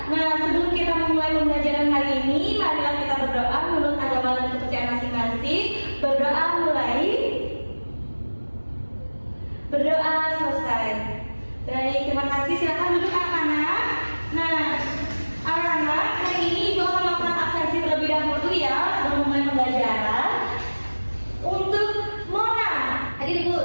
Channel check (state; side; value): inverted; both; correlation -1.00